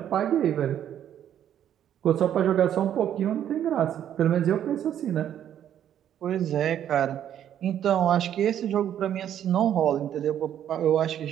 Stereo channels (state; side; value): quieter; left; 10.3 dB